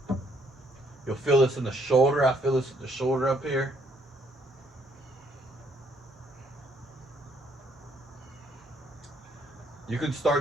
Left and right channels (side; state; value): both; normal; correlation 0.68